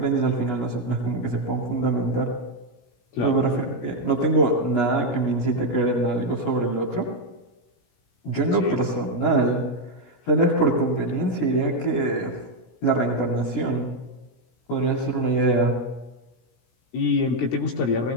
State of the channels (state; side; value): late; right; 17 ms